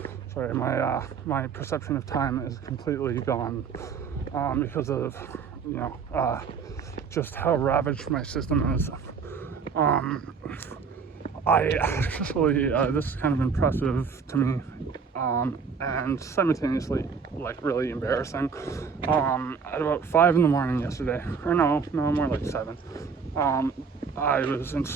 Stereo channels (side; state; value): left; quieter; 5.8 dB